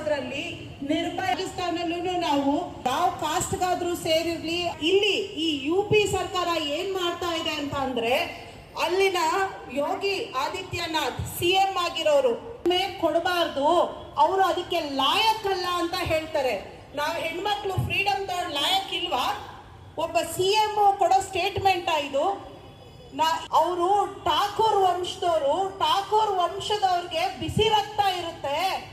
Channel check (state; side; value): identical; both; correlation 1.00